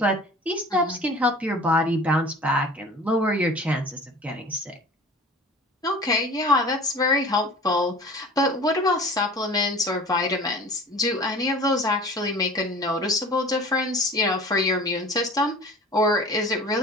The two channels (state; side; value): normal; both; correlation 0.41